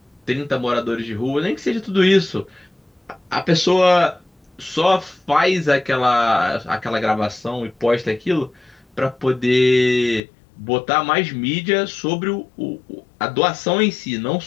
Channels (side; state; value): right; drops out; at 10.2 s